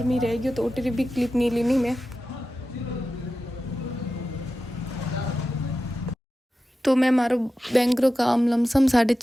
में रह गई तो उठे भी क्लिप नहीं लेनी मैं। तो मैं मारो बैंक रो काम लमसम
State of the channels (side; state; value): both; normal; correlation 0.93